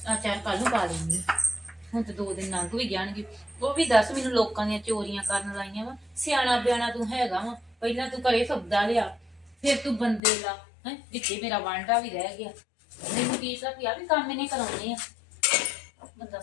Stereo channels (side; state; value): right; drops out; at 10.2 s